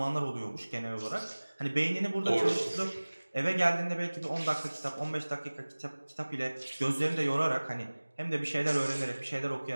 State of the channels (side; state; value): both; inverted; correlation -1.00